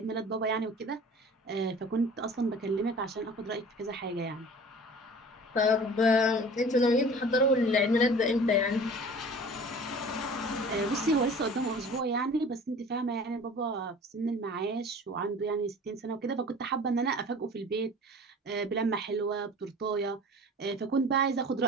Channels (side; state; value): both; normal; correlation 0.43